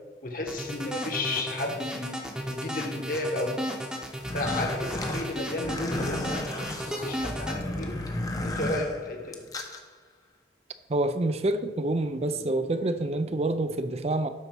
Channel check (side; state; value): both; normal; correlation 0.53